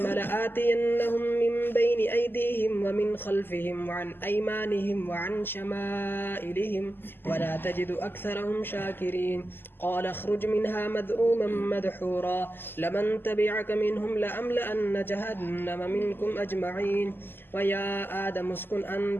لآتينهم من بين أيديهم ومن خلفهم وعن أيمانهم وعن شمائلهم ولا تجد أكثرهم شاكرين قال اخرج منها مذءوما مدحورا لمن تبعك منهم لأملأن جهنم منكم أجمعين ويا آدم اسكن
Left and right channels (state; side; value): late; right; 0.098 ms